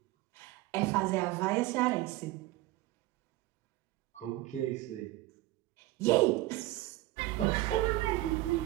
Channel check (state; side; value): quieter; left; 17.7 dB